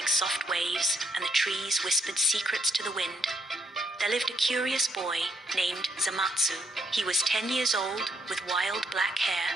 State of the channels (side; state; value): both; normal; correlation 0.73